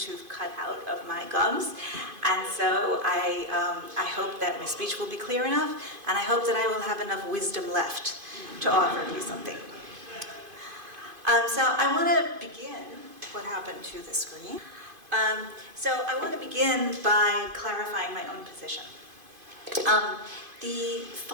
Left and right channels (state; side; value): late; left; 2.5 ms